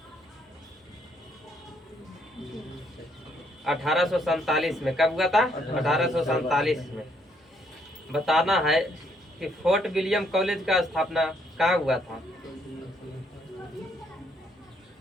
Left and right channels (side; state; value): both; normal; correlation 0.71